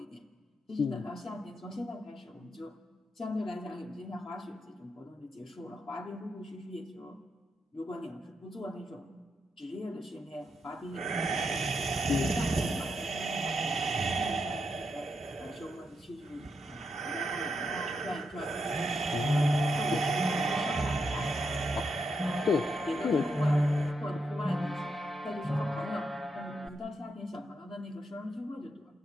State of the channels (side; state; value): both; normal; correlation 0.82